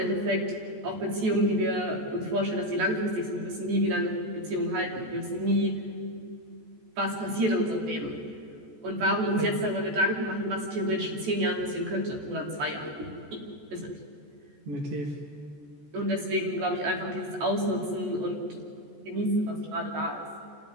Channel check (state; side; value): late; left; 14 ms